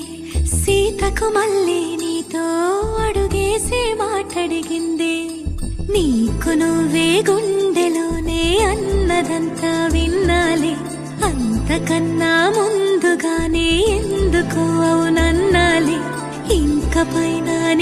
సీతకు మళ్ళీ నీతో అడుగేసి మాటడిగిందే. నీకు నువ్వే గుండెలోనే అన్నదంతా విన్నాలే, అంతకన్నా ముందుగానే ఎందుకు అవునన్నాలే. ఇంక పైన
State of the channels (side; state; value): both; identical; correlation 1.00